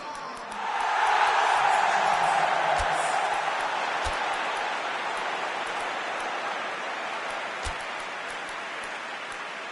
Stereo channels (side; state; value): both; identical; correlation 1.00